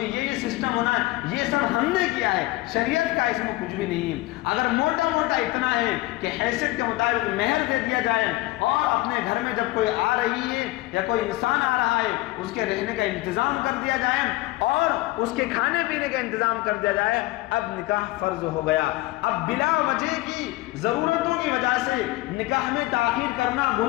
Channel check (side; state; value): right; quieter; 19.0 dB